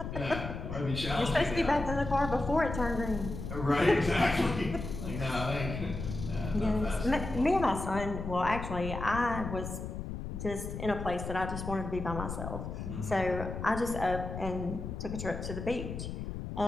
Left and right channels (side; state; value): left; noise; rumble, 6 dB below the sound